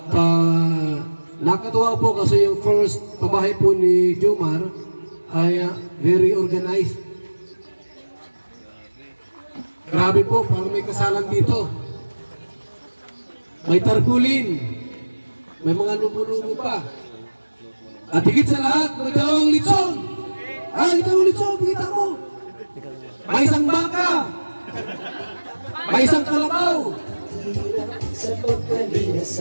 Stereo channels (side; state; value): both; inverted; correlation -1.00